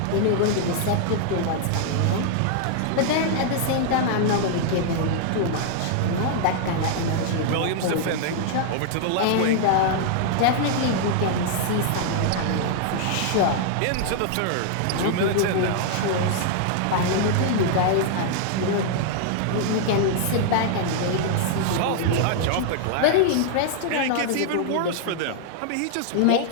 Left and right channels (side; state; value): both; different; correlation -0.01